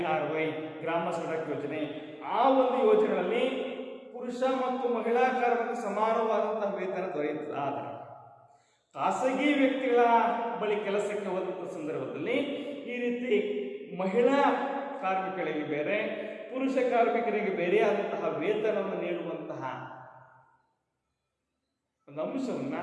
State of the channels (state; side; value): identical; both; correlation 1.00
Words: ಗ್ರಾಮ ಸಡಕ್ ಯೋಜನೆ, ಆ ಒಂದು ಯೋಜನೆಗಳಲ್ಲಿ ಪುರುಷ ಮತ್ತು ಮಹಿಳಾ ಕಾರ್ಮಿಕ ಸಮಾನವಾದಂತಹ ವೇತನ ದೊರೆಯುತ್ತದೆ. ಆದರೆ ಖಾಸಗಿ ವ್ಯಕ್ತಿಗಳ ಬಳಿ ಕೆಲಸಕ್ಕೆ ಹೋದಂಥ ಸಂದರ್ಭದಲ್ಲಿ ಈ ರೀತಿ ಮಹಿಳಾ ಕಾರ್ಮಿಕರಿಗೆ ಬೇರೆ, ಪುರುಷ ಕಾರ್ಮಿಕರಿಗೆ ಬೇರೆಯಾದಂತಹ ವೇತನವನ್ನು ನೀಡುವಂತಹ ಒಂದು ಅಂಶವನ್ನ